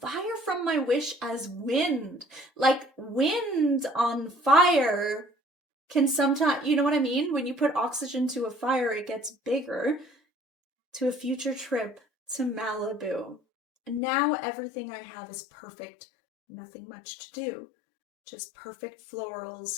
fire from my wish as wind. Like wind on fire can sometimes, you know what I mean? When you put oxygen to a fire, it gets bigger. to a future trip to Malibu. Now everything I have is perfect, nothing much to do. Just perfect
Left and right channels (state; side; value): drops out; right; at 14.0 s